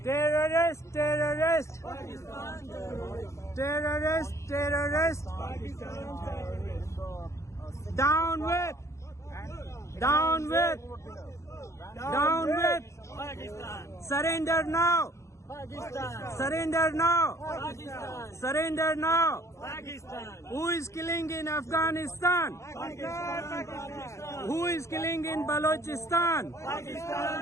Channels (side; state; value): right; late; 0.14 ms